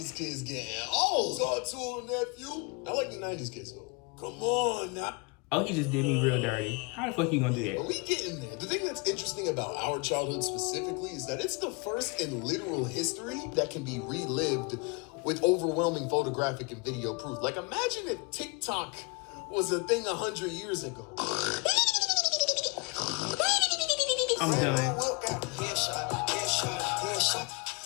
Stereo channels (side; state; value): right; quieter; 30.3 dB